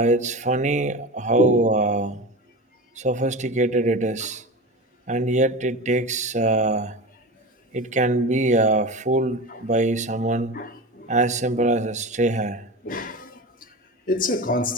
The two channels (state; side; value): normal; both; correlation 0.27